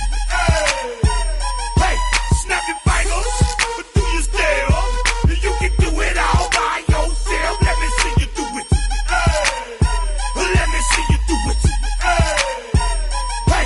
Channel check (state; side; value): identical; both; correlation 1.00